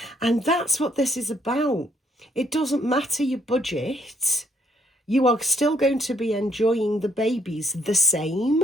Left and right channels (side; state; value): both; normal; correlation 0.68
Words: And that's what this is about. It doesn't matter your budget. You are still going to be enjoying the babies the same.